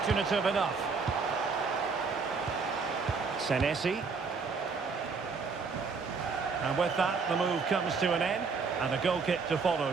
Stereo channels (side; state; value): left; quieter; 4.9 dB